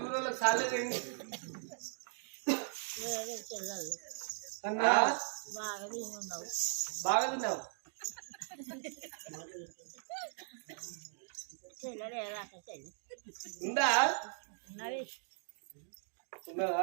ఊళ్ళో సాలేదండి అన్నా బాగా తిన్నావు ఉందా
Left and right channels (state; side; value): silent; left; digital silence